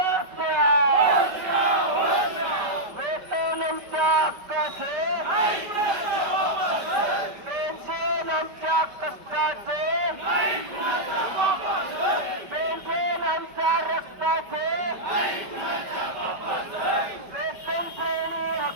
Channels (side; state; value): left; late; 5.0 ms